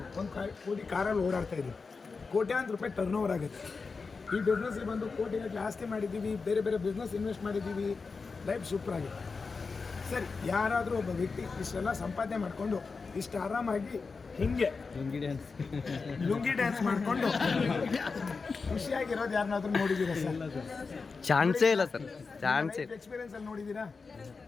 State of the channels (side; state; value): right; quieter; 4.6 dB